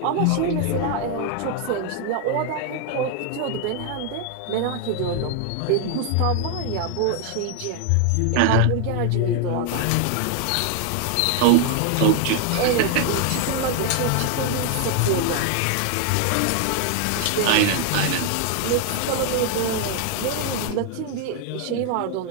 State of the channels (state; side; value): different; both; correlation 0.00